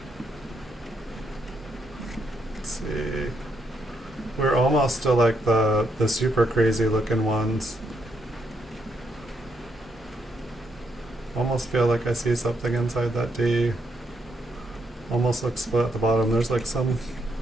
Let's see. We're almost to like the super crazy looking ones. Almost feel like I see something inside that D. Almost looks split at the bottom. There's like some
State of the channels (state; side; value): normal; both; correlation 0.78